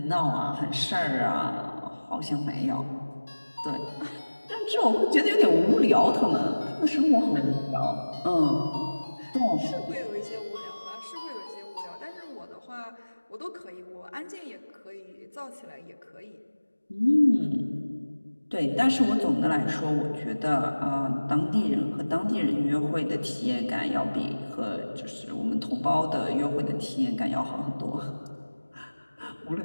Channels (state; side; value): inverted; both; correlation -1.00